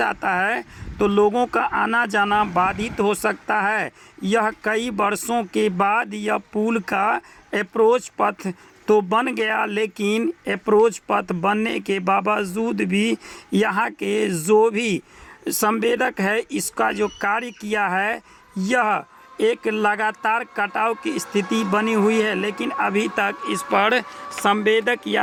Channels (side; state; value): both; identical; correlation 1.00